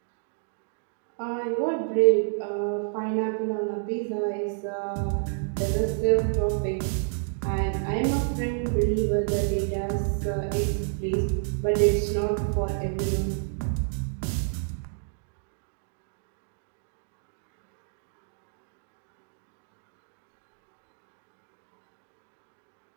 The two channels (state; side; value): silent; left; digital silence